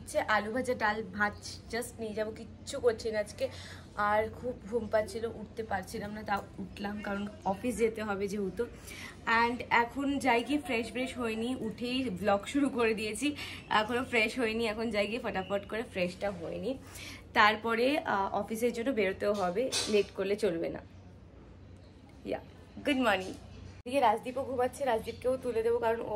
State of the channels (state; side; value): identical; both; correlation 1.00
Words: আলু ভাজা, ডাল, ভাত জাস্ট নিয়ে যাবো, কিচ্ছু করছি না আজকে। আর খুব ঘুম পাচ্ছিল, উঠতে পারছিলাম না, তাও উঠলাম কারণ অফিস যেতে হবে যেহেতু। অ্যান্ড এখন যাই গিয়ে ফ্রেশ হয়নি, উঠেই ব্লগ শুরু করে দিয়েছি। এখনও ফ্রেশ হয়নি, এখন যাই গিয়ে ফটাফট করে ফ্রেশটা হয়নি। তারপরে অফিসের জন্য বেরোতেও হবে, লেট করলে চলবে না। ইয়া, গুড মর্নিং। এদিকে রাজদীপও ঘুমাচ্ছে, রাজদীপকেও তুলে দেবো কারণ ও